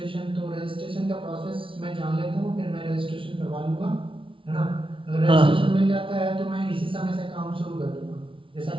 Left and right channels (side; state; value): left; late; 0.25 ms